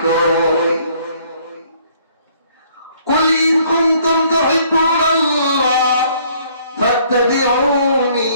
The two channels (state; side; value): inverted; both; correlation -0.62